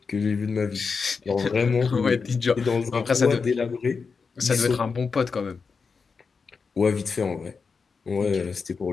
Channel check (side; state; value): right; quieter; 5.1 dB